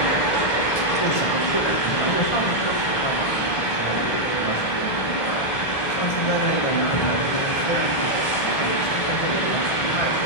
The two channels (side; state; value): right; late; 1.4 ms